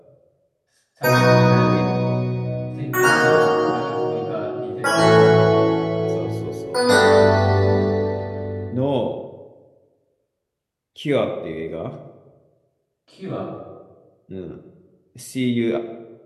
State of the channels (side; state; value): both; identical; correlation 1.00